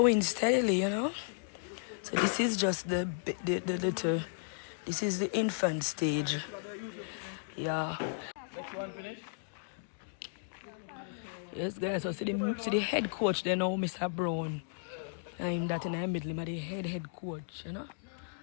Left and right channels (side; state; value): right; silent; digital silence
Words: steadily, you know. So this is just the little, this is the infant stage. Yeah. Next one finish. Yes, guys. So see the head coach there now, Mr. Brown. I'm that in the middle, but the head coach, you know.